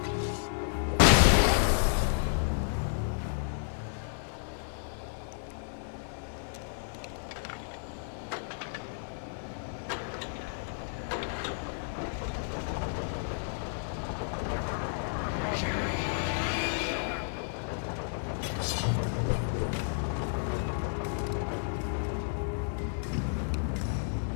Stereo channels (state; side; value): silent; right; 56 dB below the other